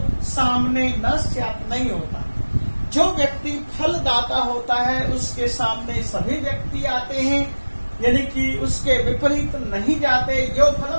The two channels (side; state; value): both; inverted; correlation -1.00